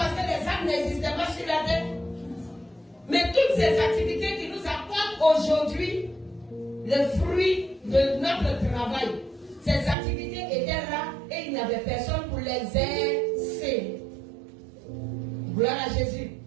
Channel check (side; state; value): left; drops out; at 10.0 s